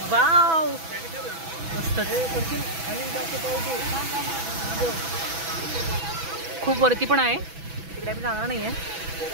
वाव मस्त. खूप वरती पण आहे तिकडे, आम्ही जाणार नाही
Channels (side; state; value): left; late; 6.1 ms